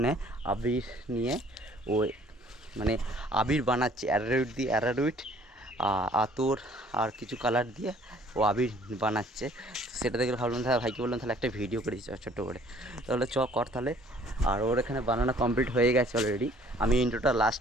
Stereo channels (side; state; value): both; normal; correlation 0.57